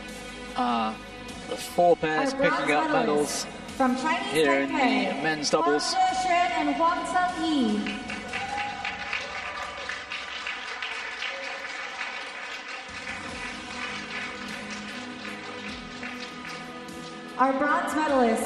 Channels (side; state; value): both; identical; correlation 1.00